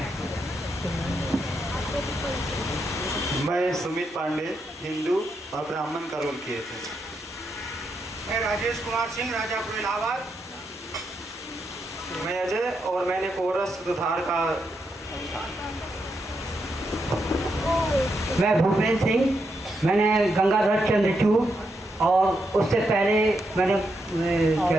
मैं सुमित पांडे हिंदू और ब्राह्मण का रोल किए थे। मैं राजेश कुमार सिंह राजापुर इलाहाबाद। मैं अजय और मैंने कोरस सुधार का मैं भूपेंद्र सिंह, मैंने गंगाधर चंद्रचूड़ और उससे पहले मैंने क्या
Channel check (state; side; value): normal; both; correlation 0.82